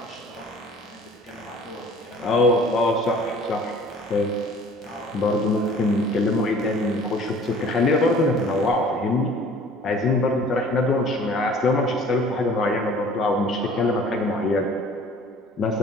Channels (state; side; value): normal; both; correlation 0.50